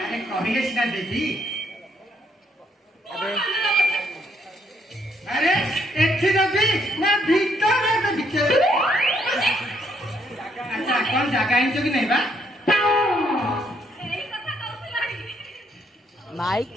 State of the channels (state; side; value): normal; both; correlation 0.72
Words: कहिले सिना देती अरे एथि नबी ना भीतर ना तो भीतर अच्छा कौन जगह आइछ कि नहीं बा माइक